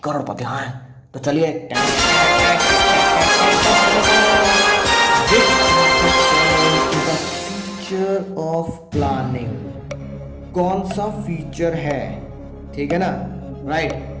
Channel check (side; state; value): both; identical; correlation 1.00